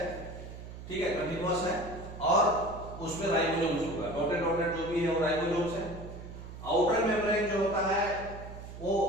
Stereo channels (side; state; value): right; noise; hum, 12 dB below the sound